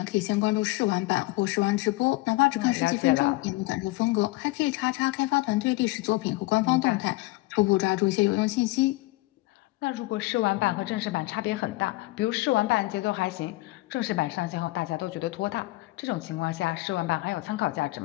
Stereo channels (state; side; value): quieter; right; 20.4 dB